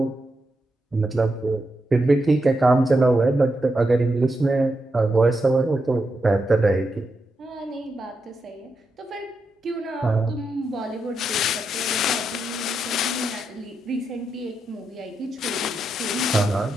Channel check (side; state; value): both; normal; correlation 0.85